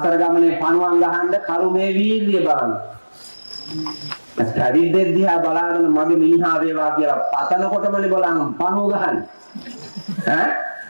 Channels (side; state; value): both; inverted; correlation -1.00